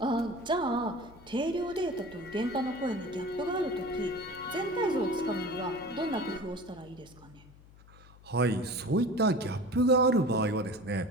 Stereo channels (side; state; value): left; noise; hum, 23 dB below the sound